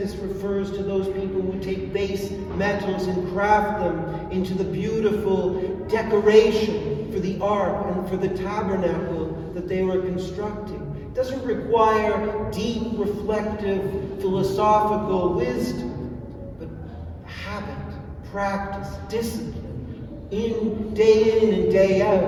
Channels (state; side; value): identical; both; correlation 1.00